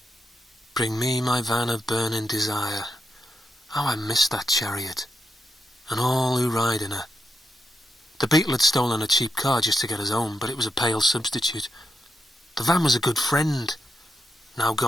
Bring me my van of burning desire. How I missed that chariot, and all who ride in her. The beetle had stolen a cheap car just to get us home, but it was a pale substitute. The van was a good friend, now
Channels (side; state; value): both; normal; correlation 0.84